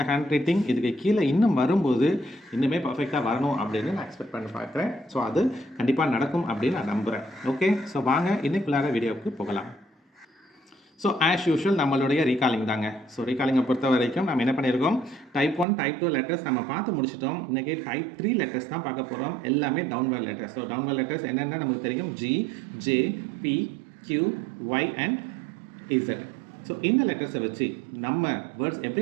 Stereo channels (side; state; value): left; drops out; at 15.7 s